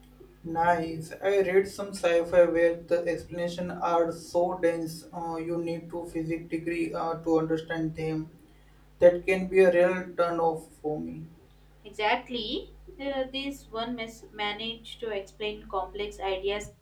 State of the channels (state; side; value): identical; both; correlation 1.00